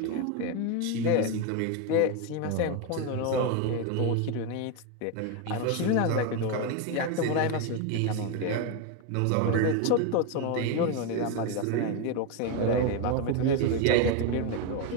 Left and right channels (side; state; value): both; different; correlation 0.02